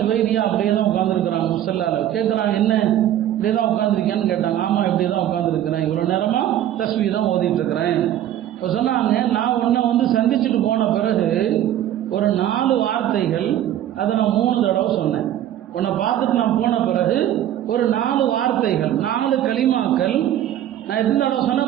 அப்படியே தான் உட்காந்துருக்குறாங்க. முஸல்லால கேட்குறாங்க, என்ன இப்படியே தான் உட்காந்துருக்கேன்னு கேட்டாங்க. ஆமாம் இப்படியே தான் உட்காந்துருக்கிறேன், இவ்வளோ நேரமாக தஸ்பீஹ் தான் ஓதிட்டு இருக்கிறேன். இப்போ சொன்னாங்க, நான் உன்னை வந்து சந்திச்சுட்டு போன பிறகு ஒரு 4 வார்த்தைகள் அதை நான் 3 தடவை சொன்னேன். உன்னை பார்த்துட்டு நான் போன பிறகு ஒரு 4 வார்த்தைகள் 4 கலிமாக்கள் நான் எத்தனை தடவை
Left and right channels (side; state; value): left; quieter; 11.7 dB